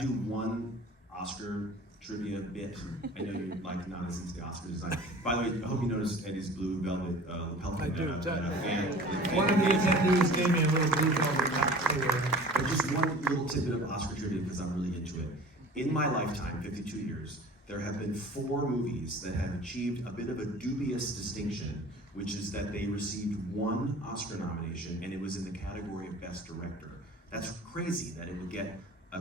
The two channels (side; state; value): both; normal; correlation 0.43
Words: one Oscar trivia bit? I know you're like not as into the Oscar design. By the way, I hope you noticed Eddie's blue velvet lapel pin. I do. Fan. One of the attendees gave me a little blue velvet hat too. But just one little tidbit of Oscar trivia because I'm really into it. In my lifetime, 52 years, there have been 4 movies that have achieved a bit of a dubious distinction, which is that they received 1 Oscar nomination, and it was in the category of Best Director. That's crazy that it would get a